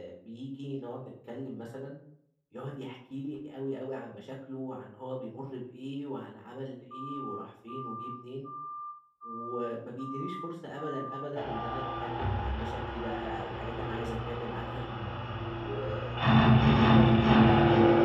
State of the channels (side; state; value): both; identical; correlation 1.00